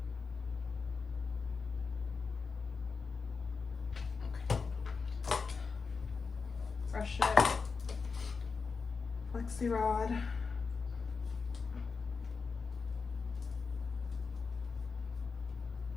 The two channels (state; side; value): quieter; right; 4.9 dB